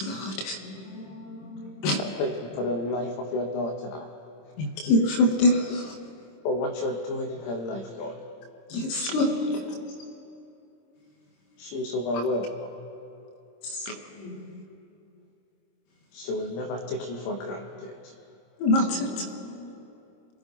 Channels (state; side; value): late; right; 26 ms